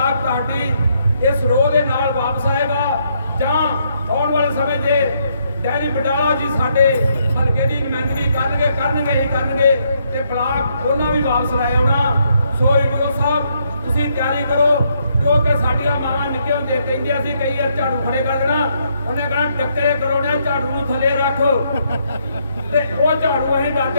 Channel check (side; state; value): both; inverted; correlation -0.74